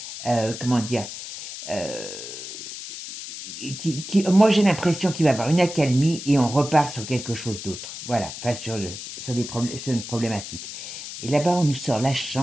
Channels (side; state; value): left; noise; hiss, 10 dB below the sound